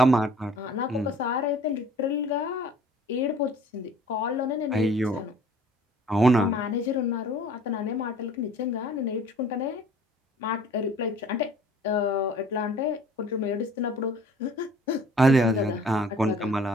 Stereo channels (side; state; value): both; normal; correlation 0.52